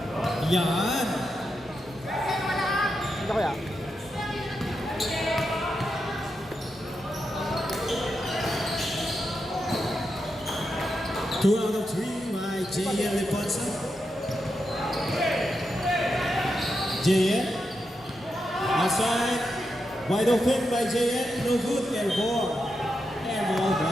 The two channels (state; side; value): normal; both; correlation 0.86